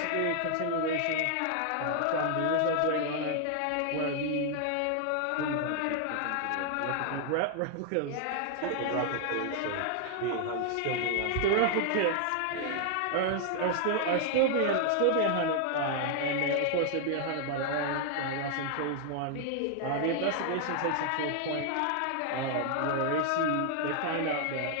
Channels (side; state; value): both; different; correlation 0.00